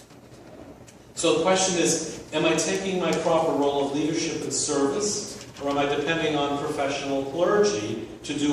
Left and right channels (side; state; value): both; identical; correlation 1.00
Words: So the question is, am I taking my proper role of leadership and service, or am I depending on professional clergy to